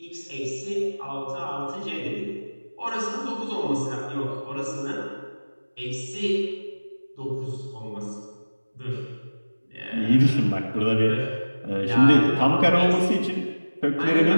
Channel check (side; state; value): both; inverted; correlation -1.00